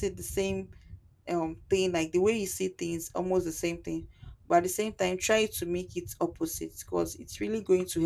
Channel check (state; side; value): identical; both; correlation 1.00